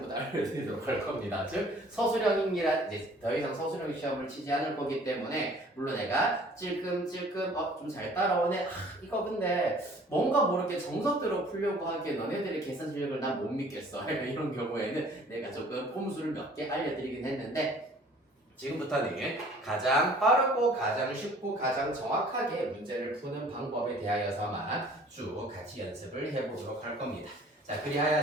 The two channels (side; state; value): both; normal; correlation 0.52